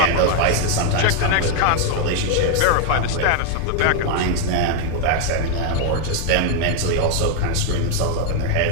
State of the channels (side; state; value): both; different; correlation 0.00